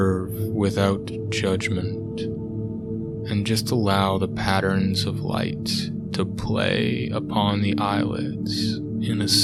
without judgment, and just allow the patterns of light to play upon the eyelids in a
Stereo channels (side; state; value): both; identical; correlation 1.00